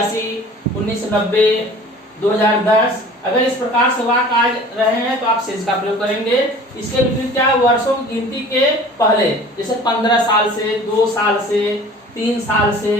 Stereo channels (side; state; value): both; normal; correlation 0.45